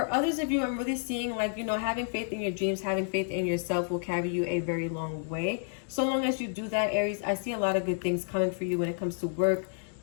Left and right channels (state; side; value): silent; right; digital silence